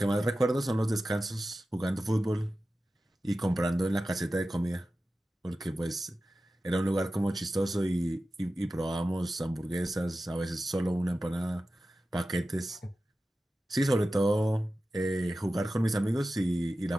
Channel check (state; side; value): normal; both; correlation 0.94